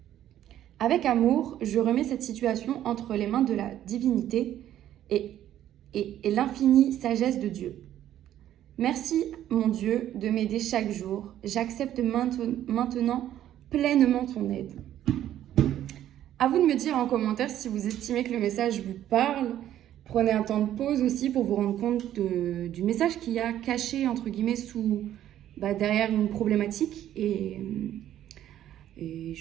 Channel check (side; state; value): left; quieter; 11.8 dB